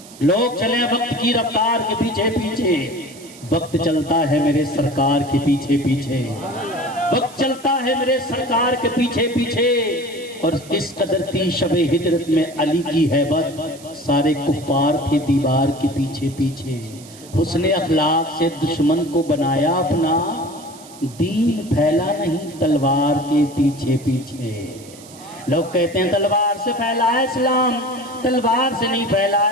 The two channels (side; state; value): right; noise; hiss, 20 dB below the sound